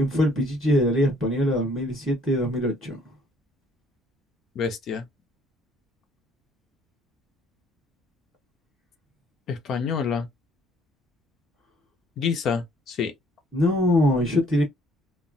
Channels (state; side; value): normal; both; correlation 0.61